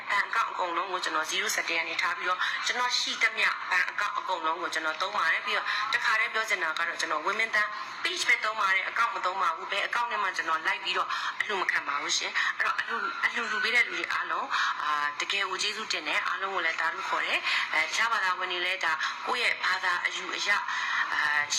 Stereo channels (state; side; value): identical; both; correlation 1.00